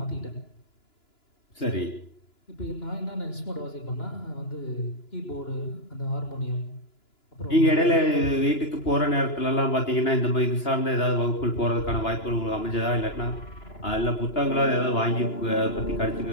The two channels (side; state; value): right; late; 2.9 ms